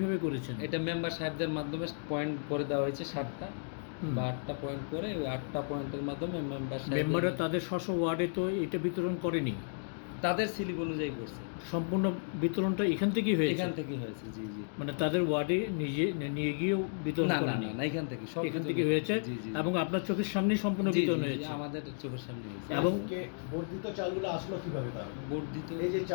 করেছেন? এটা মেম্বার সাহেবদের মাধ্যমে পয়েন্ট করে দেওয়া হয়েছে 7টা বা 8টা পয়েন্ট করে, ওই 8টা পয়েন্টের মাধ্যমে মেম্বাররা তাদের স্ব ওয়ার্ডে তো এটা বিতরণ করেনি, তাদের স্লিপ অনুযায়ী করছে। সম্পূর্ণ বিতরণটা এখান থেকেই হয়েছে? এখান থেকেই হয়েছে, জি জি। মানে তাদের ওয়ার্ডে নিয়ে গিয়েও বিতরণ করেনি? না, এখান থেকে সব এখান থেকে হয়েছে এবং আপনার চোখের সামনেই সম্পূর্ণ বিতরণ হয়েছে? আমাদের চোখের সামনে হয়েছে। এবং বর্ধিত চালগুলো আসলো কিভাবে? তাহলে বর্ধিত এই যে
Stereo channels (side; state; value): right; silent; digital silence